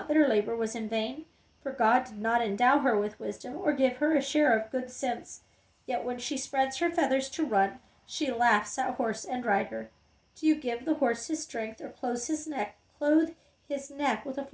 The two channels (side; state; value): both; identical; correlation 1.00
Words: that her labor was in vain, for God did not endow her with wisdom or give her a share of good sense. Yet when she spreads her feathers to run, she laughs at horse and rider. Do you give the horse his strength, or clothe his neck with a